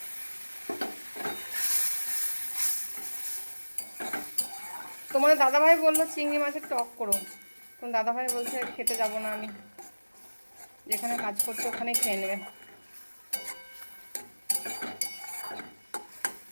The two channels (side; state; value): both; inverted; correlation -1.00